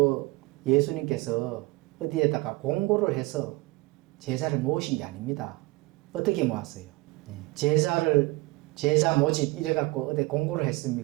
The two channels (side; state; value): left; quieter; 22.2 dB